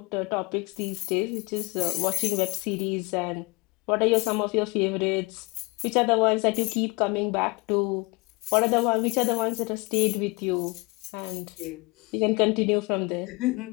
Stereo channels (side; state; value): right; quieter; 26.0 dB